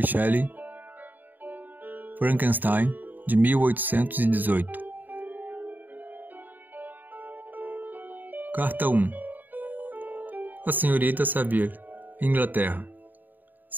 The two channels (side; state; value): left; late; 0.088 ms